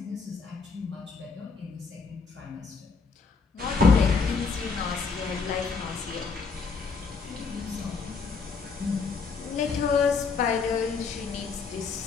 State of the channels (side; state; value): right; quieter; 4.9 dB